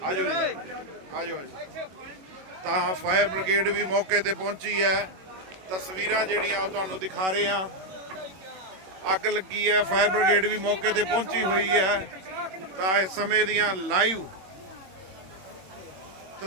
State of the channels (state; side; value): late; left; 21 ms